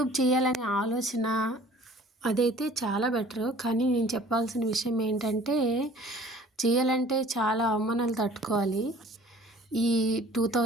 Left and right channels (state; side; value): normal; both; correlation 0.50